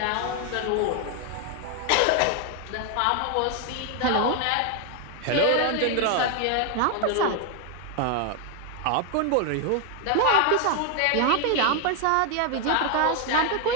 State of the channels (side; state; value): both; different; correlation 0.00